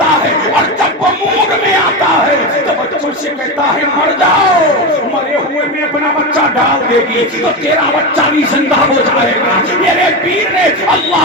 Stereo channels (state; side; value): normal; both; correlation 0.18